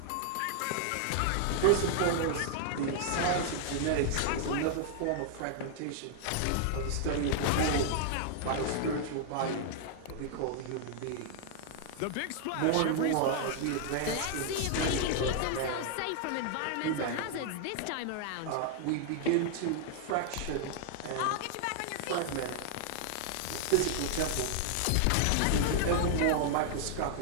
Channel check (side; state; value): both; different; correlation -0.01